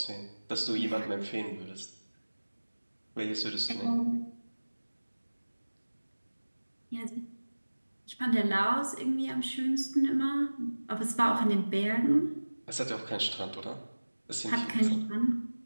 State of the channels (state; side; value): inverted; both; correlation -1.00